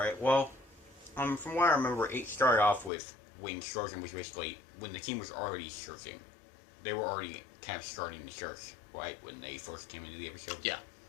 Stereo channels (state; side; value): drops out; right; at 2.9 s